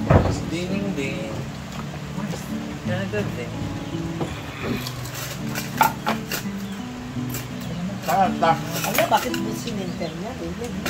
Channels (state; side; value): identical; both; correlation 1.00